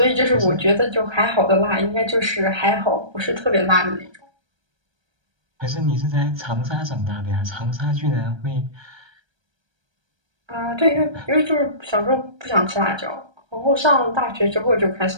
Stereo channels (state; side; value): late; left; 1.3 ms